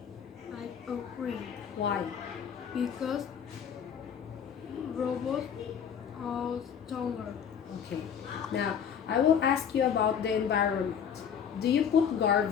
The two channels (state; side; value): quieter; right; 7.8 dB